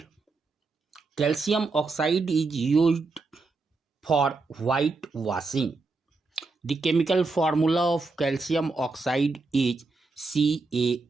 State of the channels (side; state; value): left; quieter; 3.8 dB